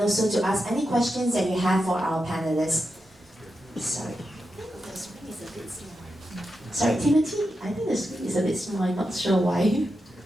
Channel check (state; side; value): normal; both; correlation 0.88